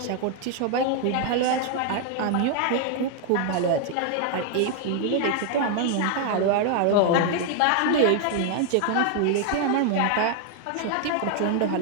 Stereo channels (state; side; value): different; both; correlation 0.00